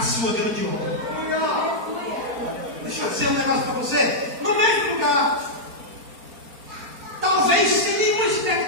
sua grande obra. Deixa eu dizer um negócio para você, no mesmo lugar, talvez sem nenhuma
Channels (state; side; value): late; left; 4.4 ms